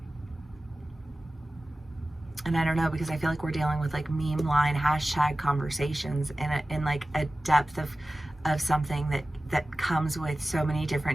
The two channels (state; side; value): normal; both; correlation 0.96